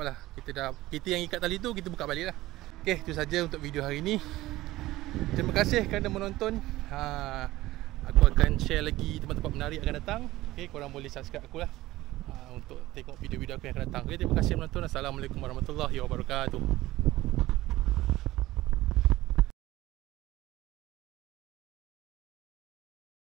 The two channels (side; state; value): left; quieter; 17.2 dB